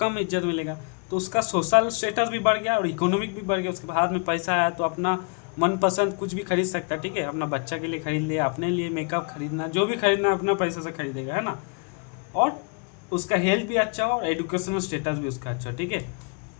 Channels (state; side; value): quieter; right; 36.8 dB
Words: कम इज्जत मिलेगा, तो उसका सोशल स्टेटस भी बढ़ गया और इकोनॉमिक भी बढ़ गया। उसके हाथ में पैसा है तो अपना मनपसंद कुछ भी खरीद सकता है, ठीक है। अपना बच्चा के लिए खरीद लिया, अपने लिए मेकअप खरीदना, जो भी खरीदना अपना पैसा से खरीदेगा, है ना। और उसका हेल्थ भी अच्छा हो और एजुकेशनल स्टेटस भी उसका अच्छा, ठीक है।